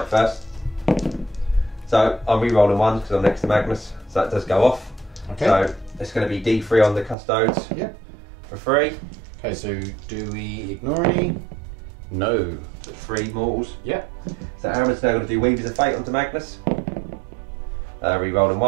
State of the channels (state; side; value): drops out; left; at 7.2 s